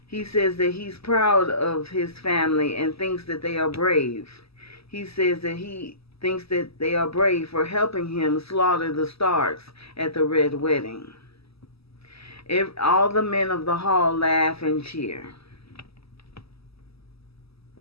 He says that he's proud of his family and thinks that they are brave. He says that he thinks that they are brave for helping him slaughter the Starks at the Red Wedding. All the men of the hall laugh and cheer.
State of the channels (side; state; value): right; late; 0.77 ms